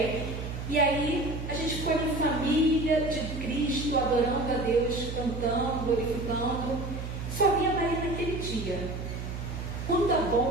E aí a gente foi em família de Cristo, adorando a Deus, cantando, glorificando. Só vi a Marina naquele dia. Quando a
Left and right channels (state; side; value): noise; right; hum, 7 dB below the sound